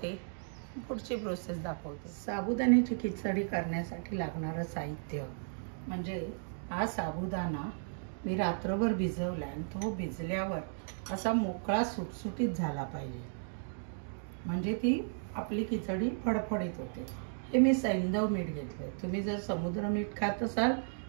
पुढची प्रोसेस दाखवते. साबुदाण्याची खिचडी करण्यासाठी लागणारं साहित्य म्हणजे हा साबुदाणा मी रात्रभर भिजवला आणि तो भिजल्यावर असा मोकळा सुटसुटीत झाला पाहिजे, म्हणजे ती आपली खिचडी फडफडीत होते. हे मी सैंधव मीठ घेतले. तुम्ही जर समुद्र मीठ खात असाल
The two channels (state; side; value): silent; left; digital silence